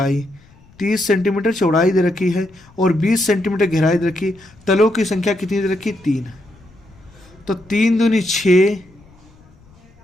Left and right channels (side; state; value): left; noise; rumble, 27 dB below the sound